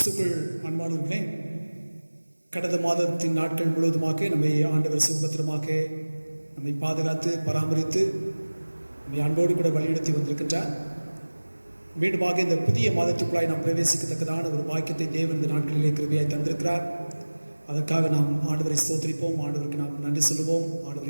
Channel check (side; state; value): both; inverted; correlation -1.00